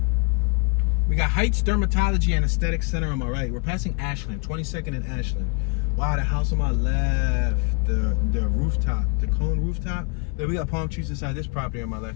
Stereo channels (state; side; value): quieter; right; 29.7 dB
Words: We got Heights Dermatology and Aesthetic Center on my right. We're passing Ashland, 22nd and Ashland. Wow, the house on my left, the rooftop, the cone rooftop. Then we got palm trees inside this property on my